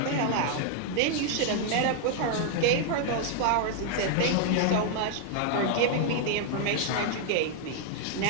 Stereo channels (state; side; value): different; both; correlation 0.00